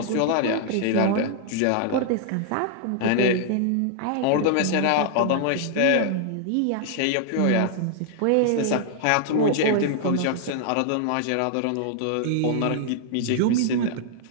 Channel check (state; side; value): different; both; correlation -0.01